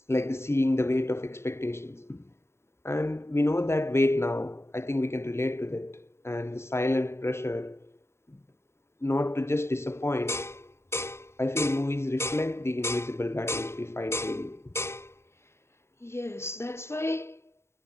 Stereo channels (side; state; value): right; late; 0.13 ms